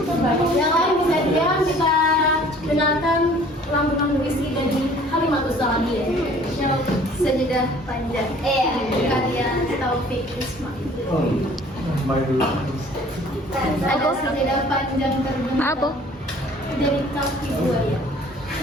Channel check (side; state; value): both; normal; correlation 0.52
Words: Yang lain bisa diam, kita dengarkan lantunan puisi dari Halimatus Sa'diyah. Sajadah Panjang. Karya Taufik Ismail. Ada sajadah panjang terbentang dari kaki buaya